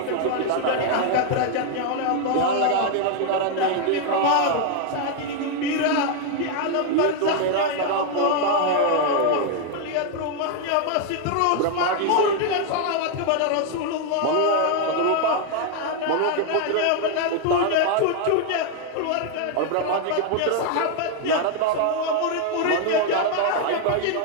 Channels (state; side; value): different; both; correlation 0.00